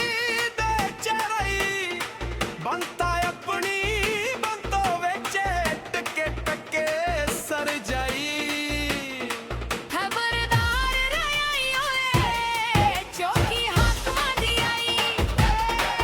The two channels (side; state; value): both; identical; correlation 1.00